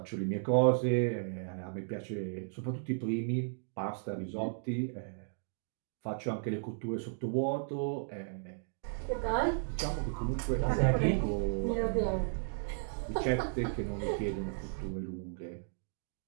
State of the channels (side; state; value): left; silent; digital silence